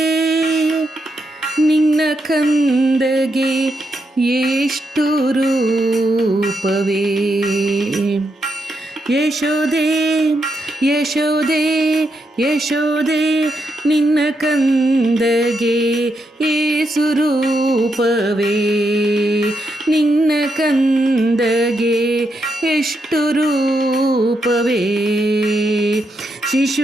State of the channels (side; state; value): both; normal; correlation 0.82